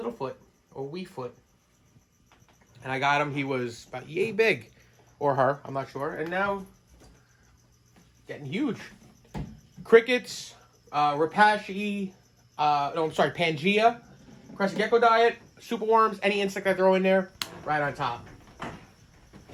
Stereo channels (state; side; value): identical; both; correlation 1.00